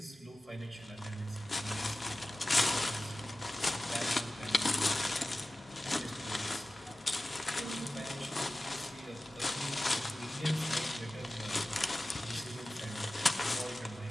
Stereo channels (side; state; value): both; normal; correlation 0.96